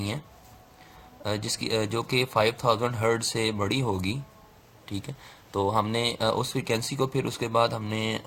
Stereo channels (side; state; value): both; identical; correlation 1.00